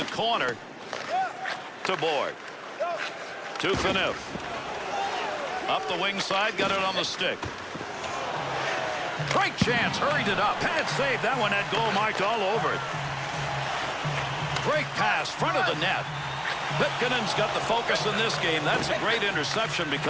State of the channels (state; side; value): identical; both; correlation 1.00